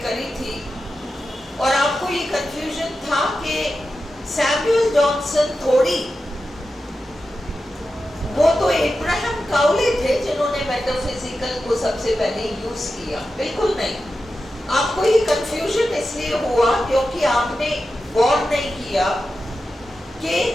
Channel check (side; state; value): both; normal; correlation 0.91